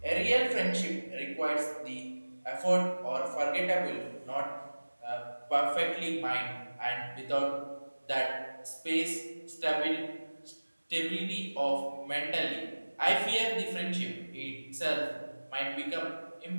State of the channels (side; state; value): both; inverted; correlation -1.00